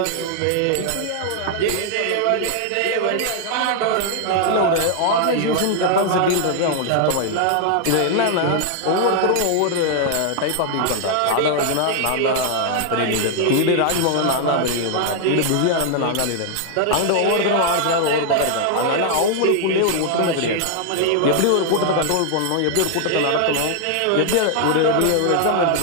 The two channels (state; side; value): different; both; correlation 0.00